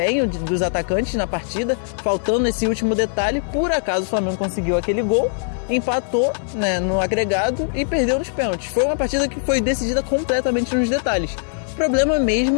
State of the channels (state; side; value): silent; right; 65 dB below the other